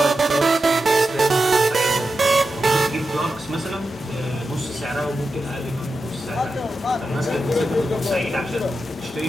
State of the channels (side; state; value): both; normal; correlation 0.90